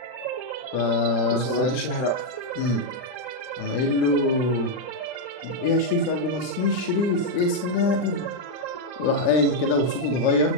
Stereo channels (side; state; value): right; late; 40 ms